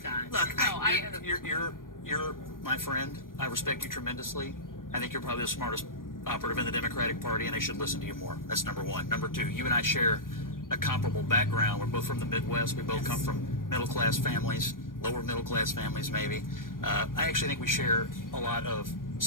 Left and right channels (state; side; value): late; right; 0.90 ms